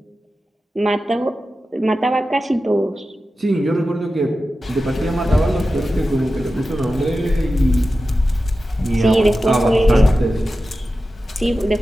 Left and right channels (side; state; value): both; normal; correlation 0.93